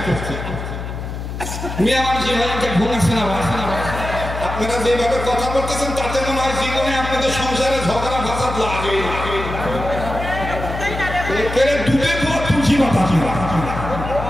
মিয়া মানুষ এভাবে ঘুম আসে না। আপনারা যেভাবে কথা বলতেছেন তাতে মনে হয় জীবনে আপনাদের সংসারে ঝগড়া ফাসাদ লাগে। ডুবে তুলছি মাথা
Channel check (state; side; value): noise; left; hum, 7 dB below the sound